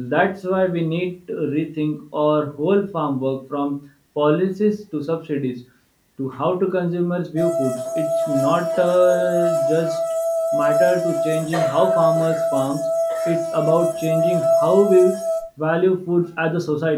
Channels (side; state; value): both; identical; correlation 1.00